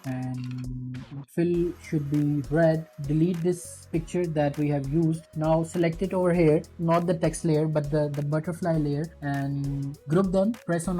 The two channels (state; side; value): identical; both; correlation 1.00